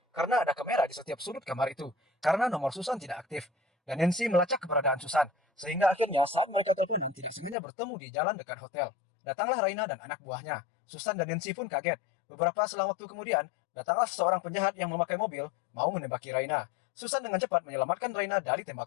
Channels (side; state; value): right; drops out; at 7.6 s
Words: karena ada kamera di setiap sudut kamar itu. Karena nomor Susan tidak aktif. Dan Nancy melacak keberadaan Susan. Sehingga akhirnya saat mereka teleponan tidak sengaja bertemu di jalan dekat hotel. Datanglah Raina dan anak buahnya. Susan dan Nancy pun kaget. Beberapa selang waktu kemudian, datanglah seorang penjahat yang memakai mobil mau menembaki Raina. Susan dengan cepat menyelamatkan Raina dari